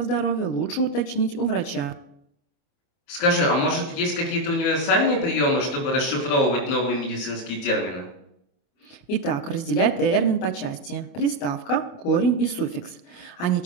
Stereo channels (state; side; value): late; right; 28 ms